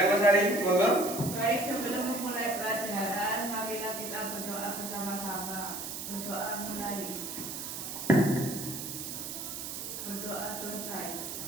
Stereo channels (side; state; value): right; noise; hiss, 6 dB below the sound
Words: Mas Ari, monggo. Baik, sebelum memulai pelajaran, marilah kita berdoa bersama-sama. Berdoa mulai. Berdoa selesai.